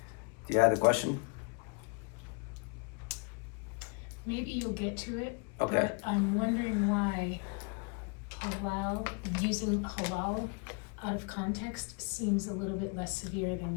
Do you have a question? Maybe you'll get to it, Okay. but I'm wondering why halal, using halal out of context seems a little bit less severe than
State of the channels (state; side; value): quieter; right; 35.2 dB